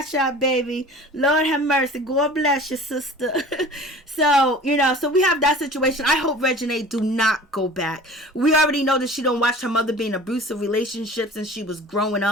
out, baby. Lord have mercy. God bless you, sister. So so we have that situation. I hope Reginae do not go back. We already know that she don't watch her mother be in abusive relationships since she was growing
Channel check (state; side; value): normal; both; correlation 0.42